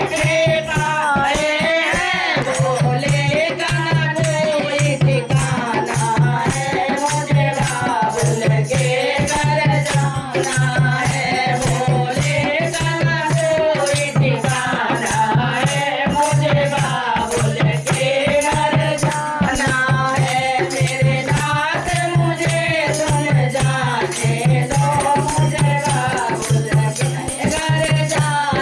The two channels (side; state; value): both; identical; correlation 1.00